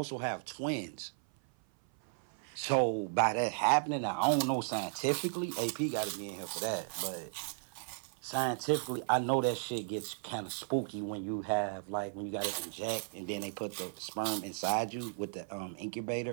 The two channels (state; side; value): silent; left; 54 dB below the other